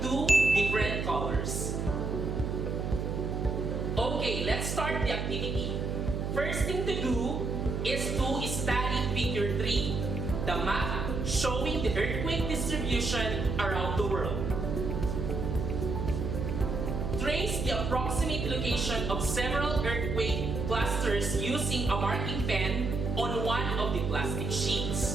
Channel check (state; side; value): noise; right; hum, 2 dB below the sound